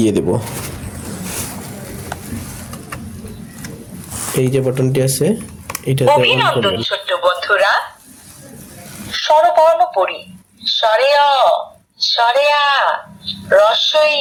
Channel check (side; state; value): both; identical; correlation 1.00